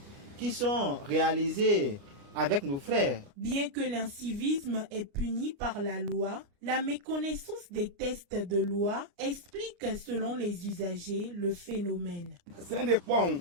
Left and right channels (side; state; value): left; late; 39 ms